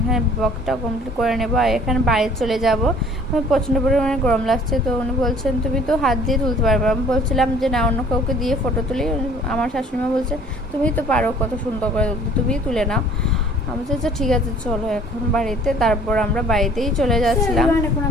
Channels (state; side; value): normal; both; correlation 0.53